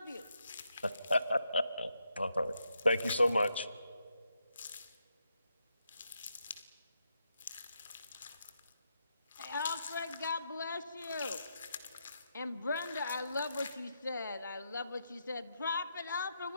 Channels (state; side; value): inverted; both; correlation -0.82